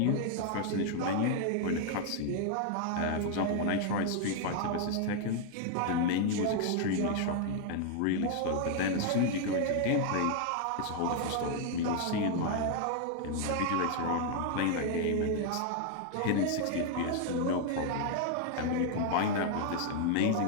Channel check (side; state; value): both; different; correlation 0.00